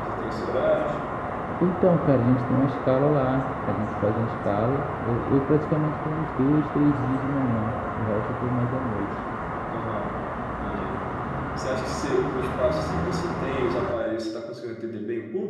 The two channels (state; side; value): identical; both; correlation 1.00